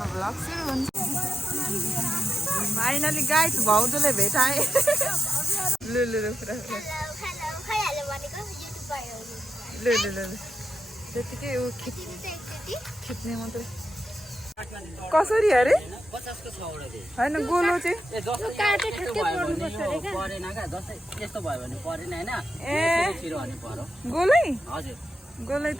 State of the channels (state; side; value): normal; both; correlation 0.89